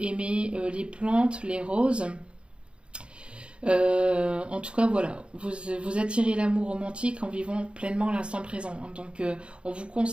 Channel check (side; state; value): left; late; 0.055 ms